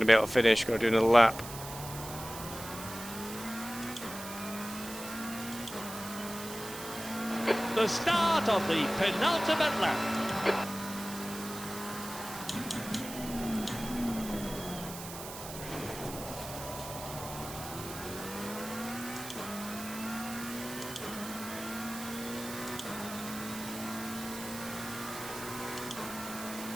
to be able to finish. Got to do another lap. The start of the penultimate lap.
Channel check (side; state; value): right; noise; hiss, 11 dB below the sound